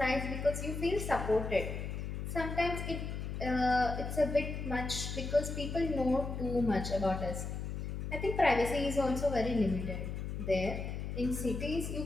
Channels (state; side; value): noise; left; hum, 5 dB below the sound